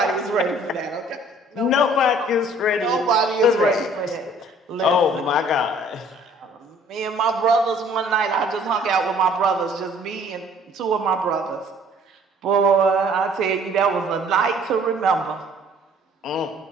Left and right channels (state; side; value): normal; both; correlation 0.56